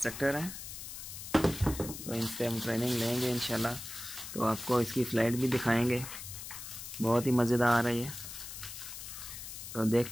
हैं, तो इनसे हम ट्रेनिंग लेंगे इंशाल्लाह, तो आपको इसकी फ़्लाइट भी दिखाएंगे। बहुत ही मज़ेदार है ये, तो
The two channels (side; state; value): left; noise; hiss, 10 dB below the sound